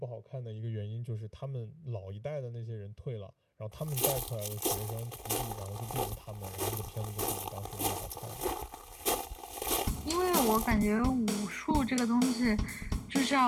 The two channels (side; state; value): both; identical; correlation 1.00